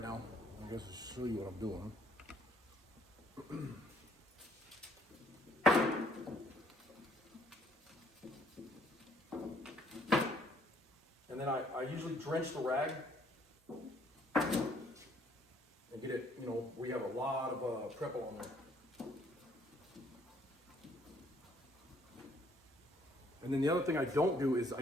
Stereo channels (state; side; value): normal; both; correlation 0.64